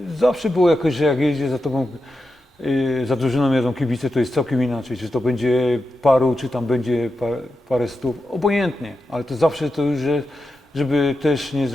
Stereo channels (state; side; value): normal; both; correlation 0.89